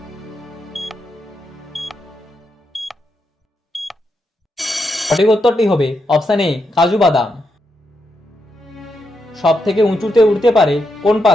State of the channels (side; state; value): both; normal; correlation 0.83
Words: সঠিক উত্তরটি হবে অপশান এ কাজু বাদাম। সব থেকে উঁচুতে উঠতে পারে কোন